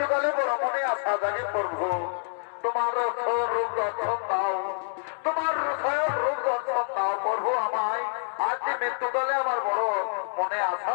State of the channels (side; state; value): right; silent; digital silence